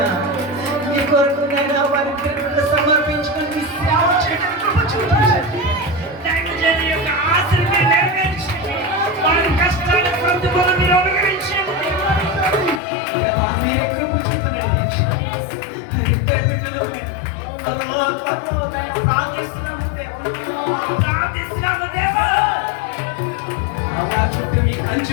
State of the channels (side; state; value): right; drops out; at 12.8 s